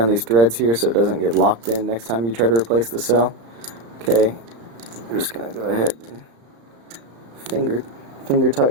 these threads here so it doesn't get locked in next time you try to replace the cell. Okay, I'm just going to go ahead and finger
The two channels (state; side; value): late; left; 35 ms